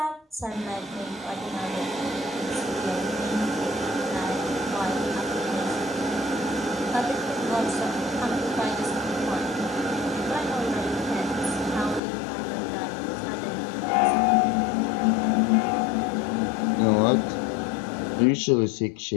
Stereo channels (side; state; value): right; drops out; at 12.0 s